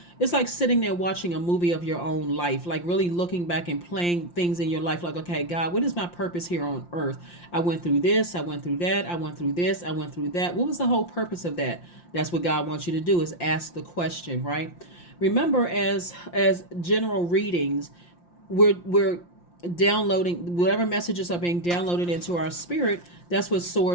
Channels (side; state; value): right; late; 5.7 ms